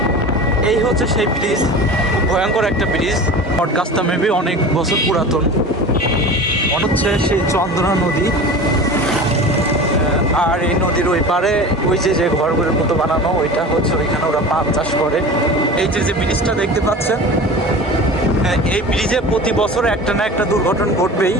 এই হচ্ছে সেই ব্রিজ, খুব ভয়ঙ্কর একটা ব্রিজ। বটগাছটা মেবি অনেক বছর পুরাতন। মনে হচ্ছে সেই চন্দ্রা নদী। আর এই নদীর ওই পারে ওই যে ঘরগুলোর মতো বানানো, ওইটা হচ্ছে ওইখানে ওরা পাট চাষ করে। এই যে ব্রিজটা দেখতে পাচ্ছেন, এই ব্রিজে প্রতি বছর একটা না একটা দুর্ঘটনা ঘটবেই।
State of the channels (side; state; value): both; normal; correlation 0.34